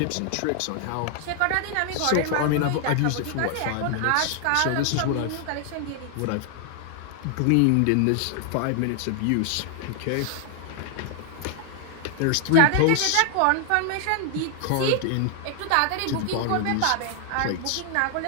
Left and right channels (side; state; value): both; different; correlation 0.00